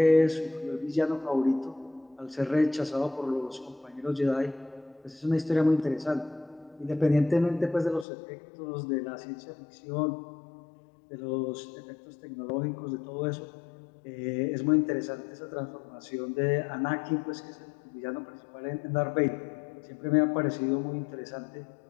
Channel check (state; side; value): drops out; right; at 8.1 s